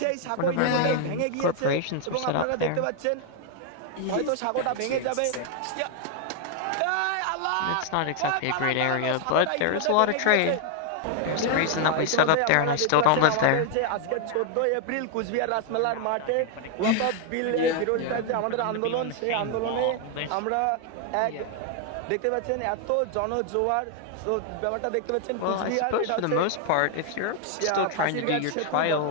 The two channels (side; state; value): both; different; correlation 0.00